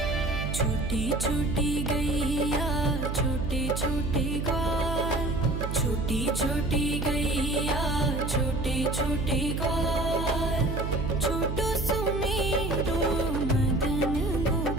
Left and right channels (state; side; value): noise; right; hum, 3 dB below the sound